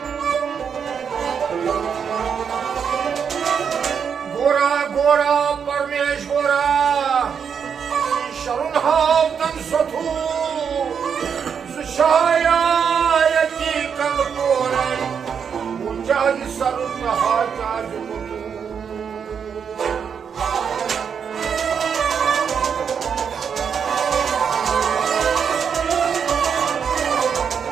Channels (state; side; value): quieter; left; 7.0 dB